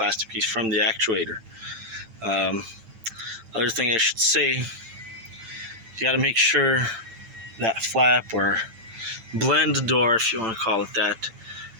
piece from the actuator, other thing I should say, you got to make sure that flap or blend door, if you want to call it that,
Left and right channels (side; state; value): left; late; 8.9 ms